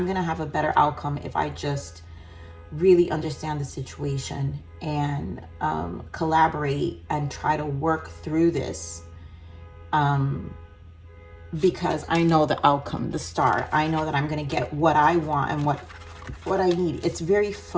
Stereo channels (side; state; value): both; identical; correlation 1.00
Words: gonna have a better outcome if I just really understand the situation and collaborate and try to work through this, because I know the outcome, the Star. I know that I'm gonna get what I want and what I need. It's very